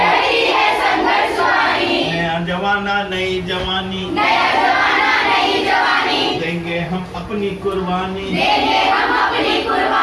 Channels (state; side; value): identical; both; correlation 1.00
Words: है संघर्ष वाहिनी। नया जमाना नई जवानी, नया जमाना नई जवानी, देंगे हम अपनी कुर्बानी, देंगे हम अपनी